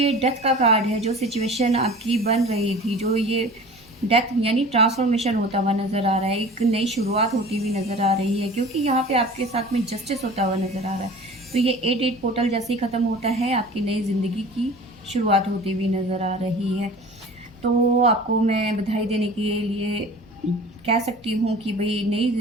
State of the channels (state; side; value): normal; both; correlation 0.41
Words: डेथ का कार्ड है, जो सिचुएशन आपकी बन रही थी, जो ये डेथ यानी ट्रांसफॉर्मेशन होता हुआ नज़र आ रहा है, एक नई शुरुआत होती हुई नज़र आ रही है, क्योंकि यहाँ पे आपके साथ में जस्टिस होता हुआ नज़र आ रहा है। तो ये 8 पोर्टल जैसे ही ख़त्म होता है, आपकी नई ज़िंदगी की शुरुआत होती हुई नज़र आ रही है। तो आपको मैं बधाई देने के लिए कह सकती हूँ कि भाई नई